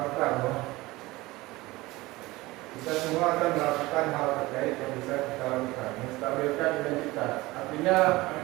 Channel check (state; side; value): quieter; left; 20.2 dB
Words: kita semua akan melakukan hal terkait yang bisa kita lakukan, menstabilkan identitas. Artinya